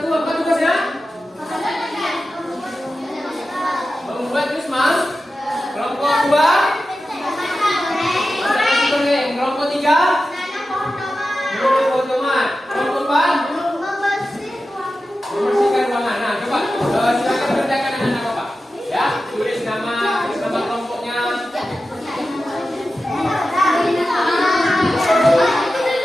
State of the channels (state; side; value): normal; both; correlation 0.93